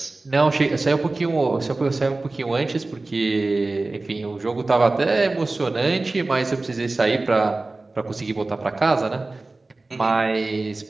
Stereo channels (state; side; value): quieter; left; 3.2 dB